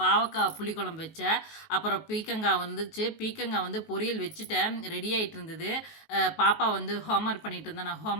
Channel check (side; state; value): right; late; 19 ms